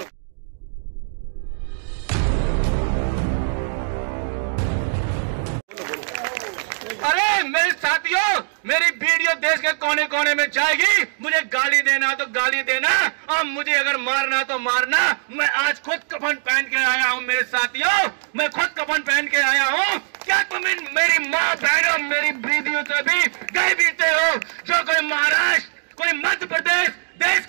अरे मेरे साथियों, मेरी वीडियो देश के कोने कोने में जाएगी। मुझे गाली देना तो गाली देना, और मुझे अगर मारना तो मारना। मैं आज खुद कफन पहन के आया हूँ मेरे साथियों, मैं खुद कफन पहन के आया हूँ। क्या तुम मेरी माँ बहनों, मेरी बीवियों से भी गए बीते हो? जो कोई महाराष्ट्र, कोई मध्य प्रदेश, देश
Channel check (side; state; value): left; silent; digital silence